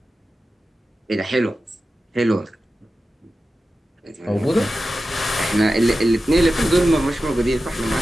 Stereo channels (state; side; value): normal; both; correlation 0.93